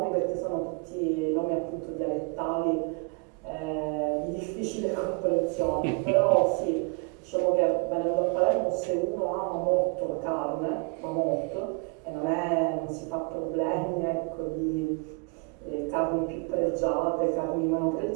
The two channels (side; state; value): left; quieter; 33.3 dB